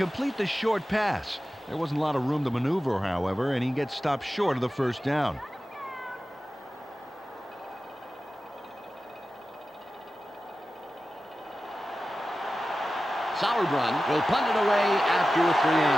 the short pass. There wasn't a lot of room to maneuver, however, and he gets stopped short of the first down. Sauerbrunn will punt it away after a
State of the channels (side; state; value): both; normal; correlation 0.94